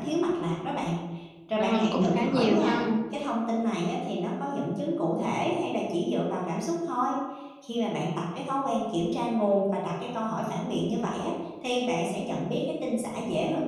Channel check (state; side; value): identical; both; correlation 1.00